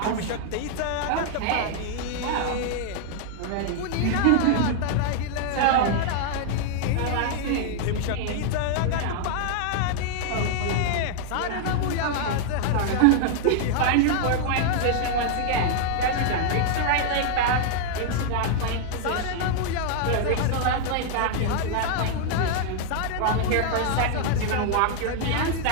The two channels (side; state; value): both; different; correlation -0.01